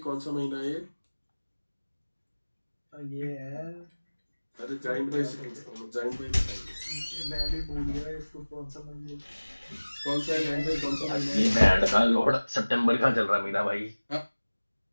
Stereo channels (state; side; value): inverted; both; correlation -1.00